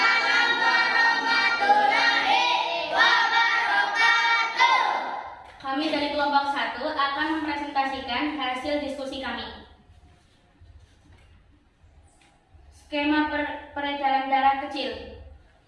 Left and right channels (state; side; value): identical; both; correlation 1.00